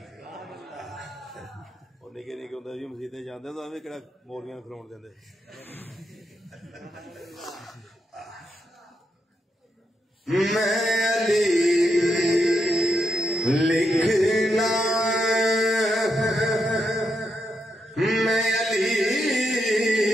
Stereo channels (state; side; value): normal; both; correlation 0.82